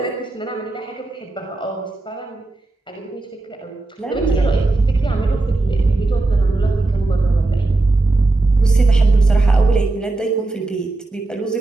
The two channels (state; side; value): quieter; left; 3.1 dB